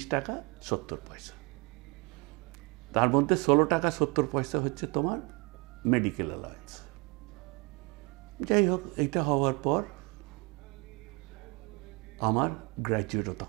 টাকা 70 পয়সা। তার মধ্যে 16 টাকা 70 পয়সা হচ্ছে তোমার মেডিকেল অ্যালায়েন্স। যাই হোক, এইটা হওয়ার পর আমার গ্র্যাজুয়েটও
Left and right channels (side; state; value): left; quieter; 28.1 dB